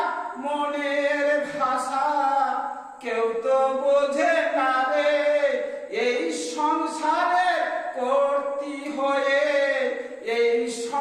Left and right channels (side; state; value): both; identical; correlation 1.00